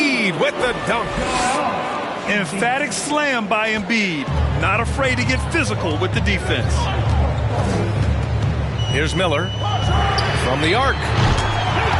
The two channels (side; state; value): both; identical; correlation 1.00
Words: with the dunk. Emphatic slam by Embiid. Not afraid to get physical with the defense. Here's Miller. From the arc.